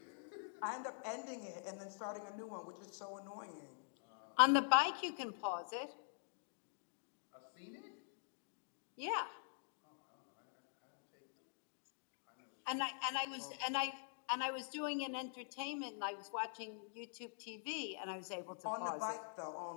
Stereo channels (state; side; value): silent; right; digital silence